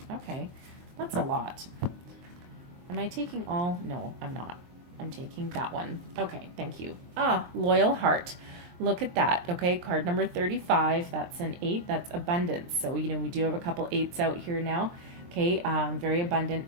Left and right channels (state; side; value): late; left; 23 ms